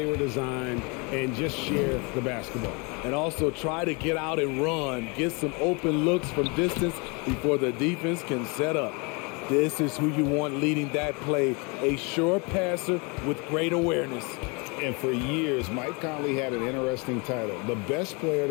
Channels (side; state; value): right; quieter; 30.7 dB